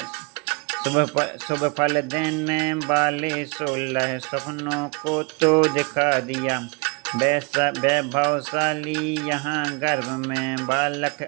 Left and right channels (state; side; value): quieter; left; 30.6 dB